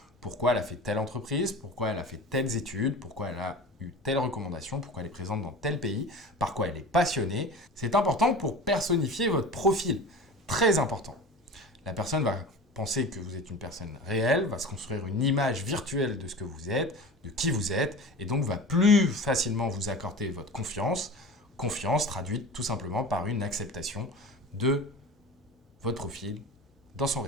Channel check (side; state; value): both; normal; correlation 0.35